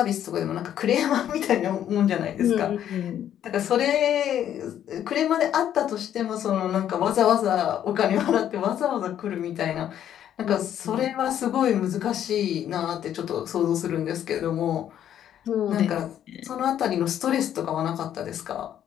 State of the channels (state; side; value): quieter; right; 10.4 dB